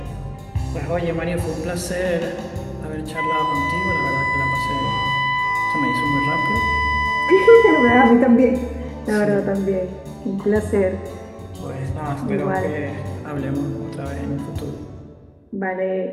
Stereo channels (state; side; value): identical; both; correlation 1.00